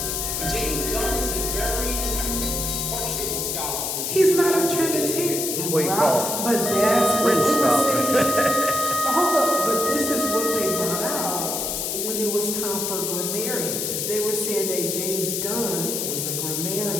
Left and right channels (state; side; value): noise; left; hiss, 1 dB below the sound